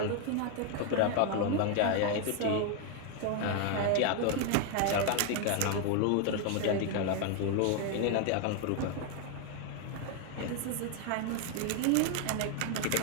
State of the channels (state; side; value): different; both; correlation 0.01